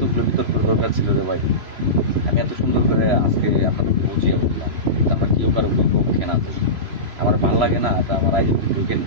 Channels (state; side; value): late; left; 3.0 ms